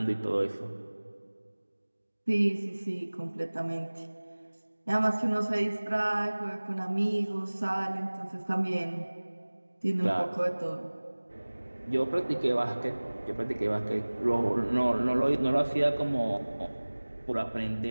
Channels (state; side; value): inverted; both; correlation -1.00